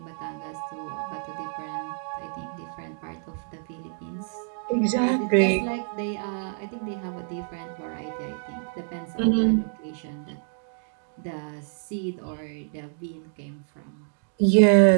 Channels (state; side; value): silent; left; 60 dB below the other